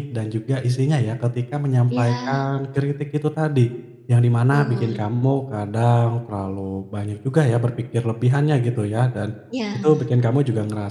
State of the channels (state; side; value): identical; both; correlation 1.00